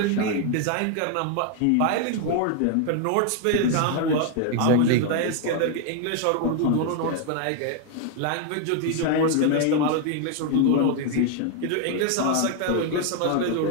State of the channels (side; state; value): both; different; correlation 0.00